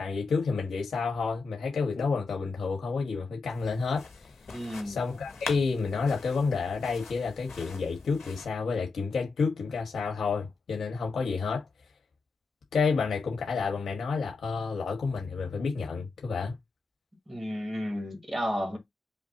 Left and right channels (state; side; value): quieter; right; 4.2 dB